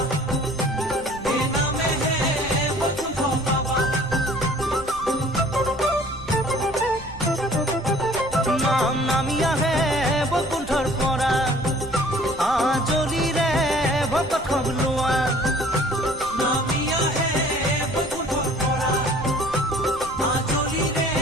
নামি আহে বৈকুণ্ঠৰ পৰা আজলিৰে ভকত খবলোৱা নামি আহে বৈকুণ্ঠৰ পৰা আজলিৰে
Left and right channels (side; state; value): right; noise; rumble, 16 dB below the sound